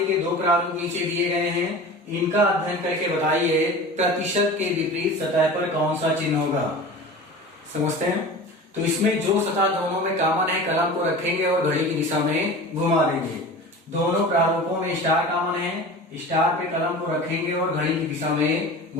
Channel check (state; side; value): normal; both; correlation 0.35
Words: के 2 प्रारूप नीचे दिए गए हैं, इनका अध्ययन करके बताइए प्रतिशत के विपरीत सतह पर कौन सा चिन्ह होगा। समझते हैं। तो इसमें जो सतह दोनों में कॉमन है, कलम को रखेंगे और घड़ी की दिशा में घुमा देंगे। दोनों प्रारूपों में स्टार कॉमन है, स्टार पे कलम को रखेंगे और घड़ी की दिशा में